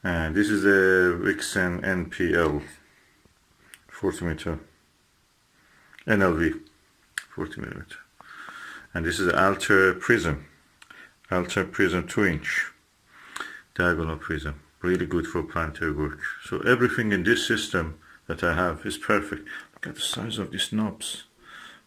And this is the Vixen NPL 40mm NLV 40mm. And this is the Alter Prism 2-inch diagonal prism, really good for planetary work. So everything in this system that I have is perfect. Look at the size of these knobs,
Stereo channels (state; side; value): identical; both; correlation 1.00